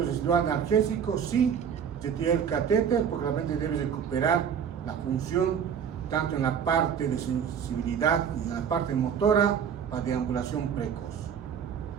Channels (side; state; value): left; quieter; 7.7 dB